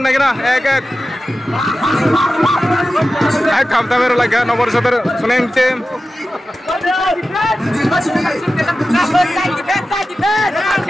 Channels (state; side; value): normal; both; correlation 0.94